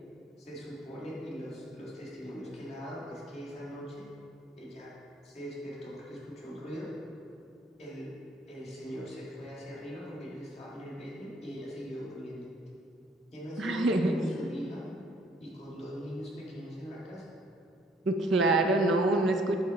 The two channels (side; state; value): both; normal; correlation 0.61